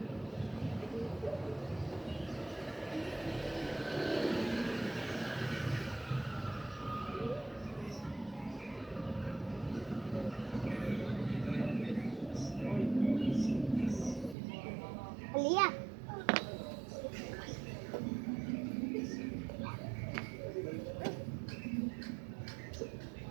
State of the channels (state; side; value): drops out; left; at 14.4 s